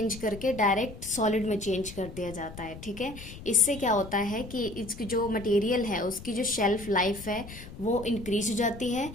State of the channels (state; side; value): noise; left; rumble, 14 dB below the sound